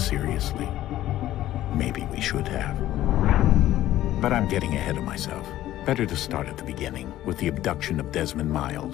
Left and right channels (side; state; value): right; quieter; 14.0 dB